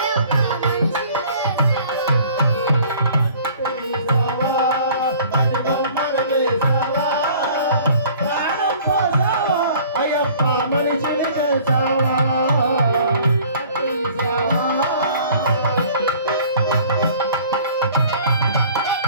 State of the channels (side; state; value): both; inverted; correlation -0.51